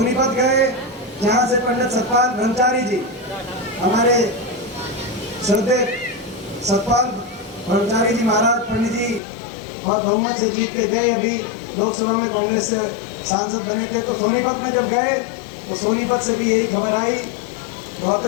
गए, जहां से पंडित सतपाल ब्रह्मचारी जी, हमारे श्रद्धेय सतपाल ब्रह्मचारी जी महाराज पंडित जी बहुत बहुमत से जीत के गए, अभी लोकसभा में कांग्रेस से सांसद बने थे। तो सोनीपत में जब गए तो सोनीपत से भी यही खबर आई,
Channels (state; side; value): drops out; right; at 9.2 s